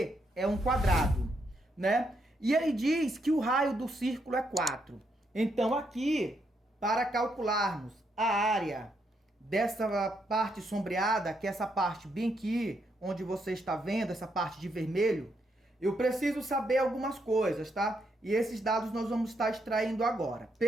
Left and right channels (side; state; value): both; normal; correlation 0.78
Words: é um quadrado, né? E ele diz que o raio do círculo é 4. Então aqui, para calcularmos a área dessa parte sombreada, que é essa parte bem aqui, onde você está vendo, essa parte de vermelho, eu preciso saber algumas coisas, tá? E esses dados nós vamos estar extraindo agora.